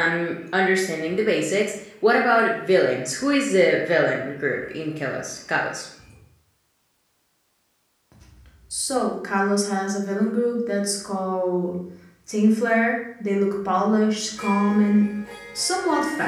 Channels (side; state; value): both; identical; correlation 1.00